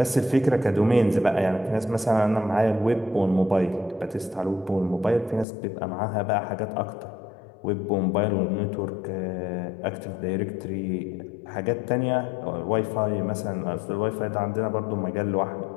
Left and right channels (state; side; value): drops out; right; at 5.5 s